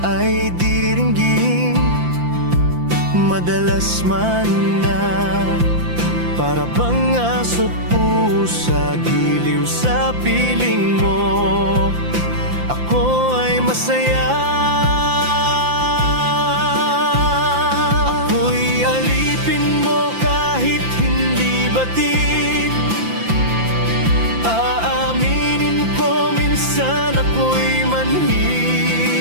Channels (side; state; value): left; late; 5.8 ms